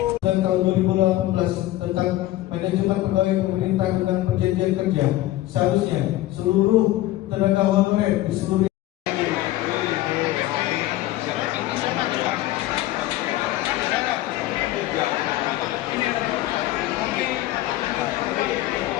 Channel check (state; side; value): quieter; right; 15.7 dB